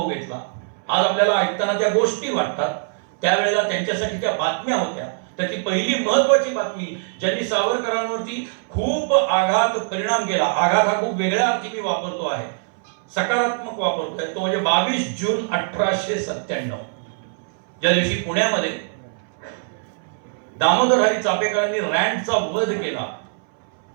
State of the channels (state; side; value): silent; left; 62 dB below the other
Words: घेतला, आज आपल्याला ऐकताना त्या गोष्टी वाटतात, त्यावेळेला त्यांच्यासाठी त्या बातम्या होत्या. त्यातली पहिली महत्वाची बातमी ज्यांनी सावरकरांवरती खूप आघात परिणाम केला, आघात हा खूप वेगळ्या अर्थी मी वापरतो आहे, सकारात्मक वापरतोय, तो म्हणजे 22 जून 1897, ज्या दिवशी पुण्यामध्ये दामोदर हरी चापेकरांनी रँडचा वध केला.